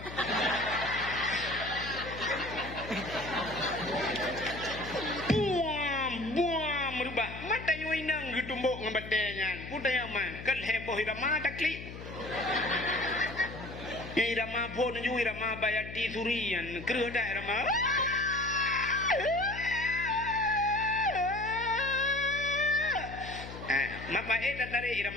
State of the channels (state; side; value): noise; left; hum, 11 dB below the sound